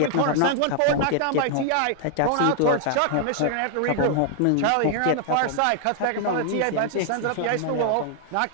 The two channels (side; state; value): both; different; correlation 0.00